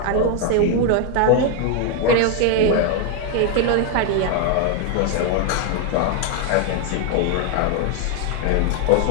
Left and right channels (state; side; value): different; both; correlation 0.01